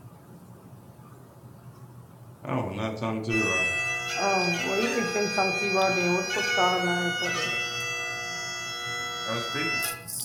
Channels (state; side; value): identical; both; correlation 1.00